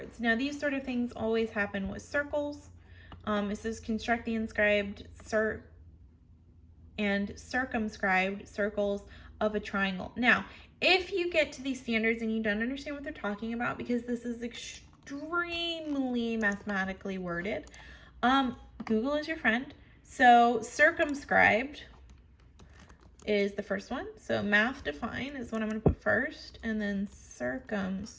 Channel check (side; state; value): both; identical; correlation 1.00